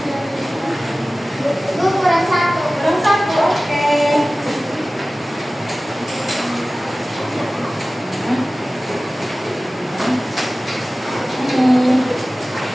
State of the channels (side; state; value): both; normal; correlation 0.97